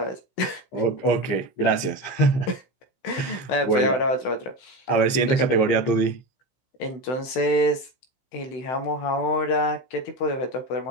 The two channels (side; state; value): right; late; 16 ms